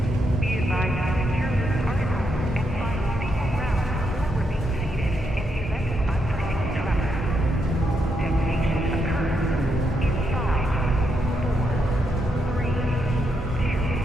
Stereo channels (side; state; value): both; normal; correlation 0.80